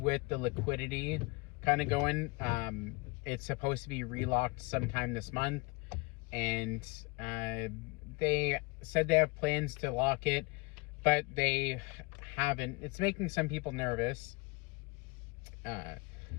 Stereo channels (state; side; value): quieter; right; 27.6 dB